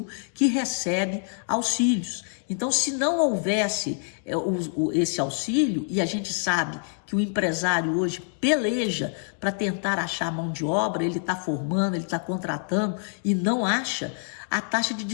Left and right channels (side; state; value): right; silent; 61 dB below the other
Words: que recebe auxílios. Então, se não houvesse esse auxílio, e a gente sabe que o empresário hoje peleja para tentar achar mão de obra, ele está formando, ele está contratando e não acha, a taxa de